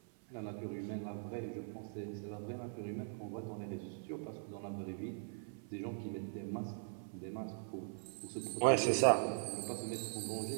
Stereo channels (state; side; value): silent; left; 50 dB below the other